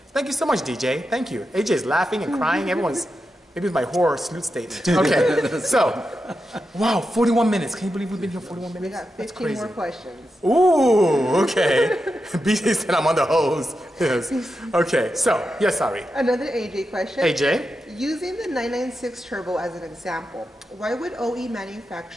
Thank you so much, DJ. Thank you. AJ is laughing and crying. Everyone's, maybe it's my horror salute statement. Okay, so, wow, 41 minutes. Can you believe we've been here 41 minutes? We got 15 more questions. Ooh, okay. Bisi said I'm on the hose. Yes. Okay, so, yes, sorry. Another AJ question. AJ? Using the 996 turbo as an example, why would OE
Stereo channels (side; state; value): both; normal; correlation 0.88